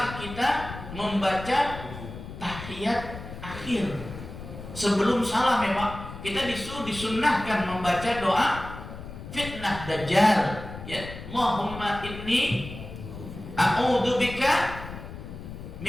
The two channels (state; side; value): noise; left; rumble, 11 dB below the sound